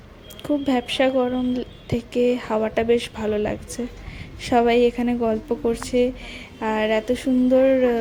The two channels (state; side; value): identical; both; correlation 1.00